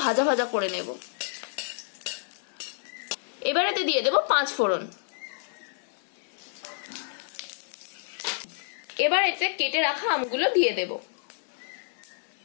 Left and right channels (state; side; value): silent; right; digital silence